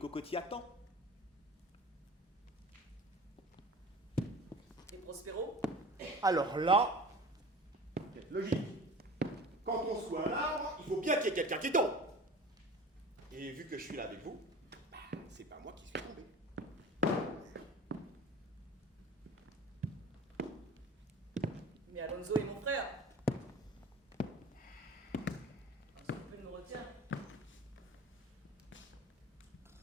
à temps. Et Prospero? Alors là, c'est logique. Quand on secoue un arbre, il faut bien qu'il y ait quelqu'un qui tombe. Et vu que je suis là avec vous, c'est pas moi qui suis tombé. Mais Alonso est mon frère. Un souffle nous retient.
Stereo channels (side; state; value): both; normal; correlation 0.40